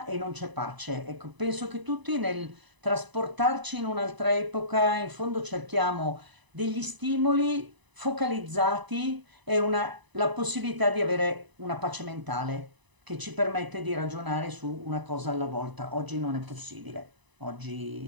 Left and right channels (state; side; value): late; left; 1.0 ms